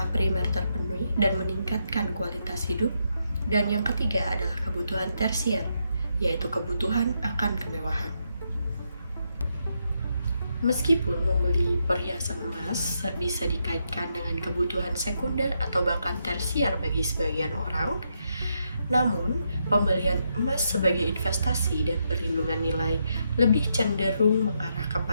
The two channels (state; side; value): inverted; both; correlation -0.80